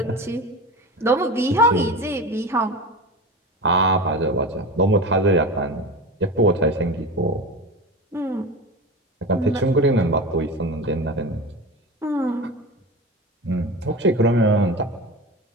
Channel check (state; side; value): normal; both; correlation 0.28